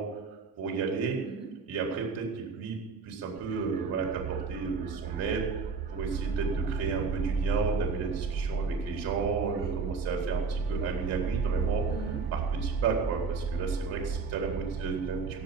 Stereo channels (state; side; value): quieter; left; 4.9 dB